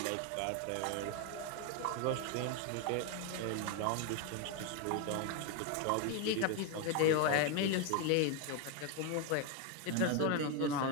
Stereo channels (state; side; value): different; both; correlation 0.01